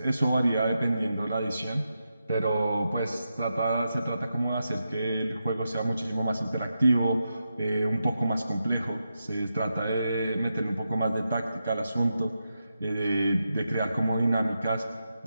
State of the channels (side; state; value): both; inverted; correlation -0.87